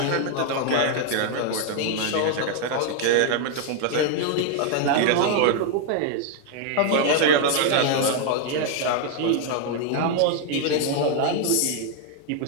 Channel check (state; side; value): different; both; correlation 0.00